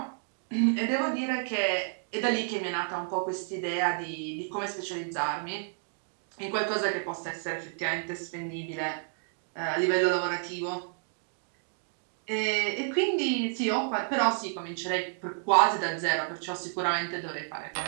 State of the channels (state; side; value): silent; left; digital silence